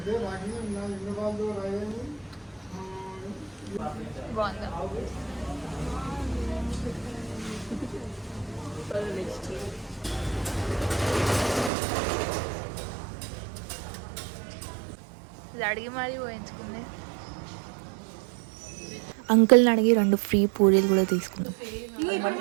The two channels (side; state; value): left; drops out; at 11.7 s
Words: బాగుందా? అడిగి మరీ పోయించుకుంది. అంకుల్ని అడిగి 2 ఫ్రీ పూరీలు కూడా తీసుకున్నాం.